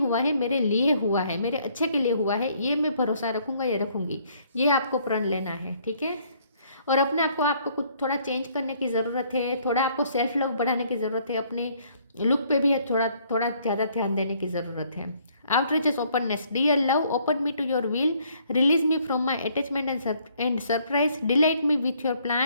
है, मेरे लिए हुआ है, मेरे अच्छे के लिए हुआ है, ये मैं भरोसा रखूँगा या रखूँगी। ये आपको प्रण लेना है, ठीक है। और अपने आपको कुछ थोड़ा चेंज करने की ज़रूरत है, थोड़ा आपको सेल्फ लव बढ़ाने की ज़रूरत है, अपने लुक पे भी थोड़ा थोड़ा ज़्यादा ध्यान देने की ज़रूरत है। Outreaches, openness, dear love, open me to your will, release me from my attachment and surprise, delight me with your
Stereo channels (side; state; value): both; inverted; correlation -0.64